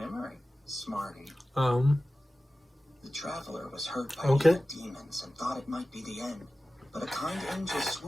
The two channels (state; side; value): normal; both; correlation 0.96